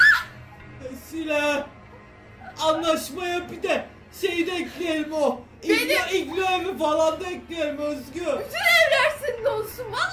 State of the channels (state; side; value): identical; both; correlation 1.00